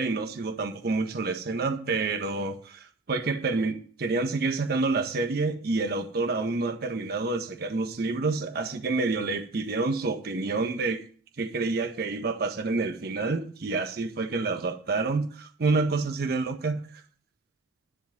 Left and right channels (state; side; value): quieter; left; 3.2 dB